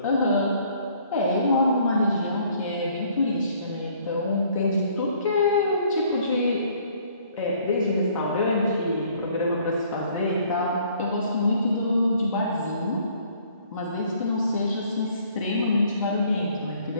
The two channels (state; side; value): inverted; both; correlation -0.60